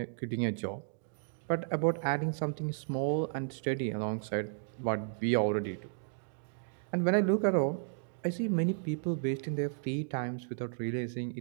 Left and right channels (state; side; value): silent; left; digital silence